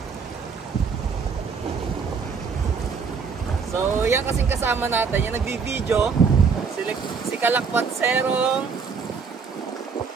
So, yan kasing kasama natin, yung nagbi-video, si Kalakwatserong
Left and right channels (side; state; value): left; quieter; 5.6 dB